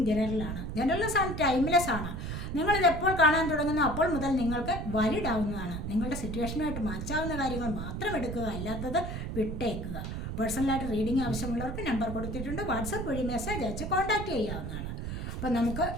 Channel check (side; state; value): right; noise; rumble, 5 dB below the sound